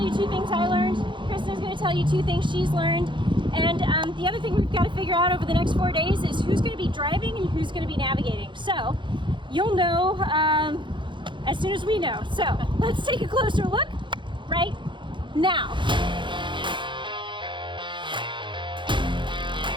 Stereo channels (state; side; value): late; left; 0.23 ms